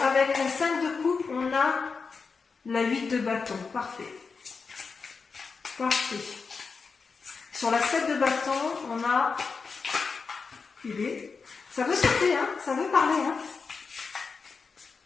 avec la 5 de coupe, on a la 8 de bâton. Parfait. Parfait. Sur la 7 de bâton, on a... Ça veut sauter, hein, ça veut parler. Hein.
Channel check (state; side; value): quieter; right; 5.0 dB